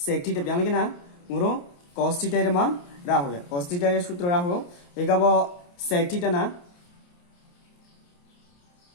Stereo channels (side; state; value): right; late; 28 ms